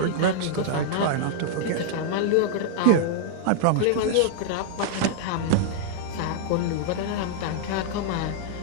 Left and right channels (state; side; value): different; both; correlation -0.01